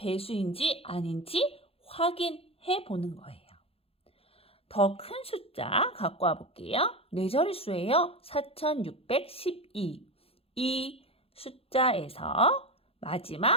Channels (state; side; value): late; right; 0.28 ms